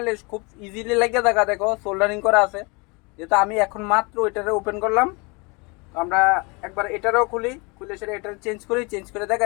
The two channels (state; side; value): quieter; right; 29.1 dB